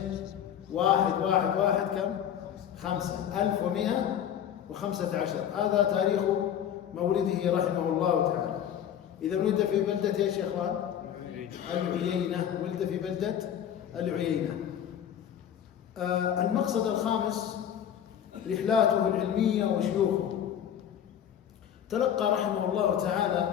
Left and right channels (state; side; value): quieter; right; 9.6 dB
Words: 1 1 1 كم؟ 5. 1115. هذا تاريخ مولده رحمه الله تعالى. إذا ولد في بلدة إيش يا إخوان؟ العيينة. ولد في بلدة العيينة. المقصد الخامس رحلاته العلمية وشيوخه. تلقى رحمه الله